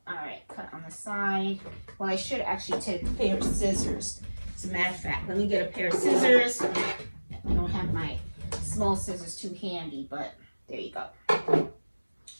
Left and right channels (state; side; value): inverted; both; correlation -1.00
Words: All right, cut on the side. Well, I should actually take a pair of scissors. As a matter of fact, let me get a pair of scissors. I don't have my small scissors too handy, but there you go.